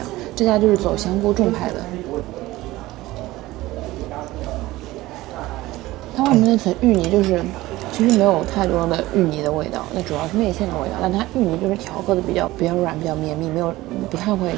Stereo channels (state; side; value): quieter; left; 18.0 dB